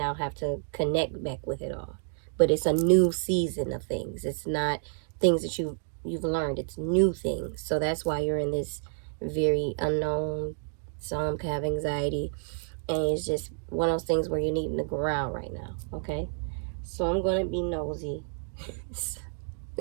have to connect back with it all. But it's a new season of things. It's not things that you've learned. It's new things. So that's why you're in this very unknown. Some have anxiety, and it's just one of those things where you're needing to ground right now. Okay, so I'm gonna be nosy.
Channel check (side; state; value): left; silent; 58 dB below the other